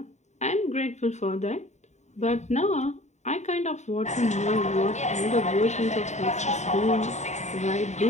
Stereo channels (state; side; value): late; right; 0.34 ms